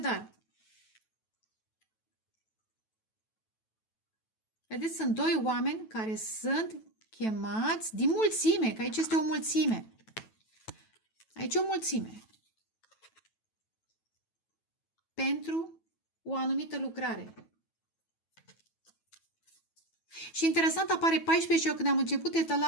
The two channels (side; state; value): right; late; 9.2 ms